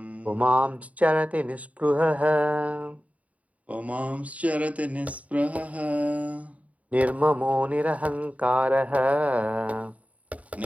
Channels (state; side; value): late; left; 0.069 ms